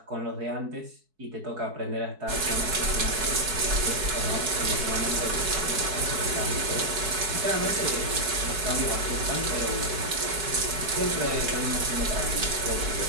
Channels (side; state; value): left; late; 4.6 ms